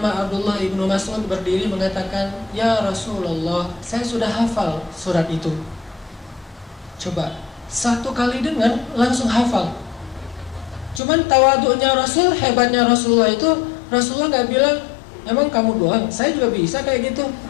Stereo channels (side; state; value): right; drops out; at 11.0 s